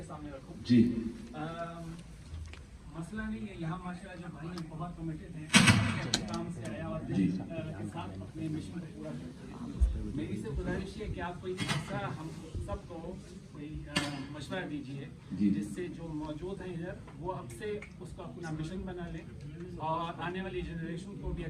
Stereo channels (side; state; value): both; identical; correlation 1.00